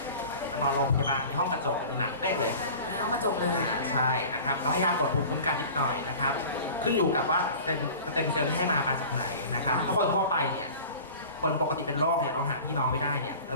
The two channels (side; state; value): both; inverted; correlation -0.40